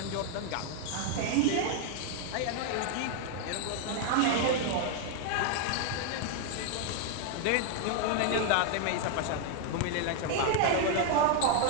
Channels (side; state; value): both; different; correlation 0.00